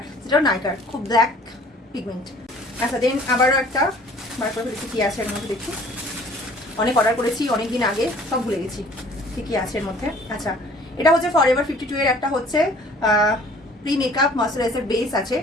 যেটা নাইকার, খুব ব্ল্যাক পিগমেন্ট। আচ্ছা দেন আবারও একটা বার করে দেখি কি আছে এর মধ্যে। দেখি অনেক অর্ডার করেছি অনেক দিন আগে, সব ভুলে গেছি ঠিকই আছে এর মধ্যে। আচ্ছা এটা হচ্ছে ফরএভার 52 এর একটা হচ্ছে প্রি মেকআপ ময়শ্চারাইজার বেস আছে।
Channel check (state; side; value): normal; both; correlation 0.53